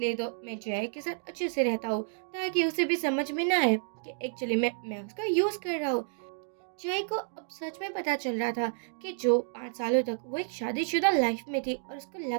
तो मैं जियाई के साथ अच्छे से रहता हूँ ताकि उसे भी समझ में ना आए कि एक्चुअली मैं उसका यूज कर रहा हूँ। जय को अब सच में पता चल रहा था कि जो 5 सालों तक वो एक शादीशुदा लाइफ में थी और उसको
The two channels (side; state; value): left; silent; digital silence